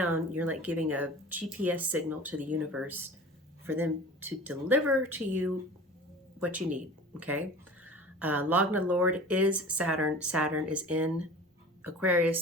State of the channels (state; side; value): normal; both; correlation 0.39